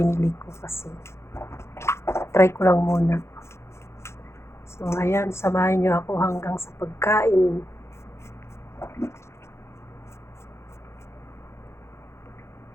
ko kasi try ko lang muna. So ayan, samahan nyo ako hanggang sa pagkain.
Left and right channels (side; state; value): right; late; 0.13 ms